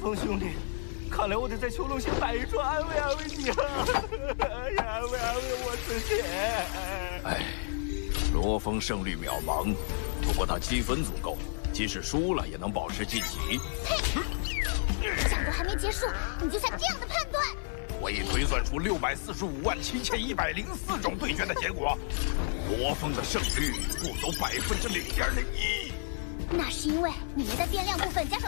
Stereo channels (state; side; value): silent; right; 57 dB below the other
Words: 兄弟，看来我得在囚笼下摆一桌安慰安慰你了，安慰安慰我自己。哎，罗峰胜率渺茫，不过他积分足够，即使输了也能保持晋级。嘿，战斗还没结束，你就下这样的判断？我已推算出6457104种对决的结果，罗峰的胜率不足0.01%。那是因为你们的变量部分加